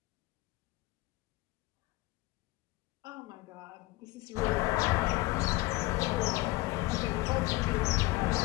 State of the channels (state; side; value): quieter; right; 20.7 dB